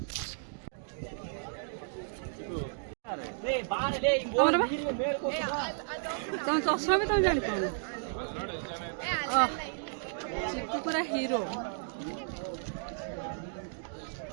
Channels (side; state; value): left; silent; digital silence